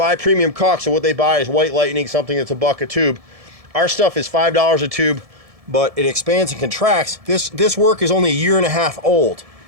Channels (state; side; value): late; left; 1.7 ms